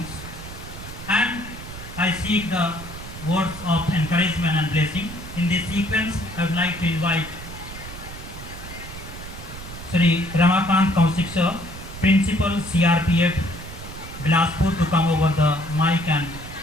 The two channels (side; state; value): right; noise; rumble, 12 dB below the sound